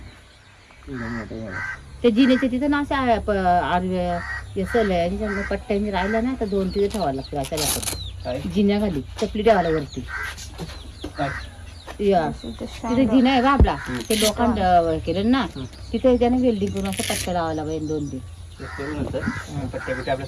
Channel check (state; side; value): identical; both; correlation 1.00